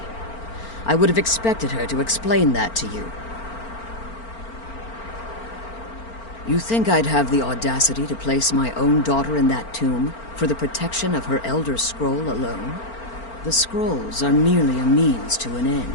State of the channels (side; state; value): right; late; 4.4 ms